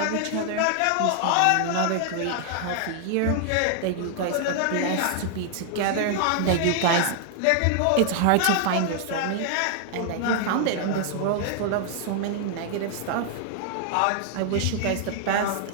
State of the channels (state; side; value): different; both; correlation 0.00